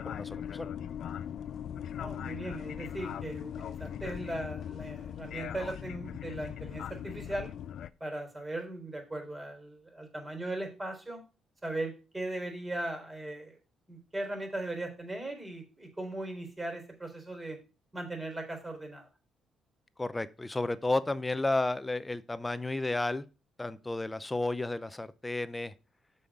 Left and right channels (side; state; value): both; normal; correlation 0.90